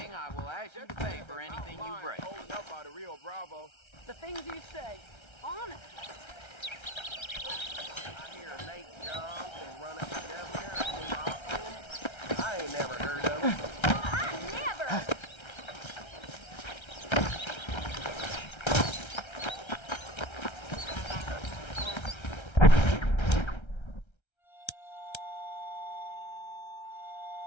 I will ask you to pay for anything you break. The things you say, honestly.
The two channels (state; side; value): late; right; 1.3 ms